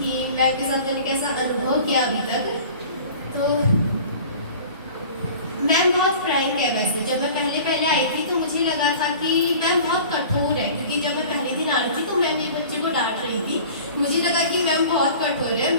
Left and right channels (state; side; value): inverted; both; correlation -0.43